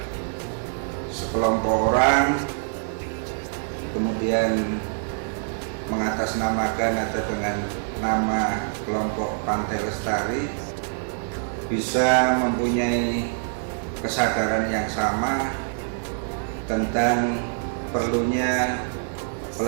sekelompok orang kemudian mengatasnamakan atau dengan nama kelompok Pantai Lestari bisa mempunyai kesadaran yang sama tentang perlunya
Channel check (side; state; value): left; silent; digital silence